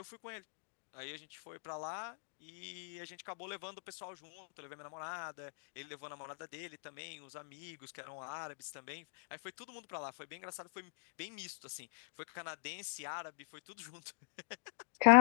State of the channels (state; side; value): silent; right; digital silence